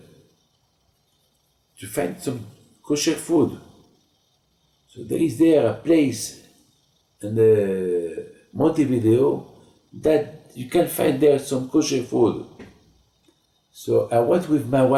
to find some kosher food. So there is a place in Montevideo that you can find there some kosher food. So I went with my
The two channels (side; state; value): both; identical; correlation 1.00